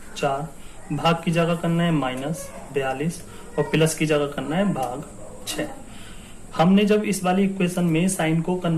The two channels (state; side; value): identical; both; correlation 1.00